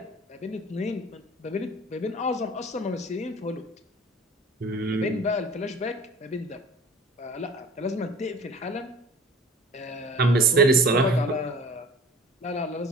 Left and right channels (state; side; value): normal; both; correlation 0.45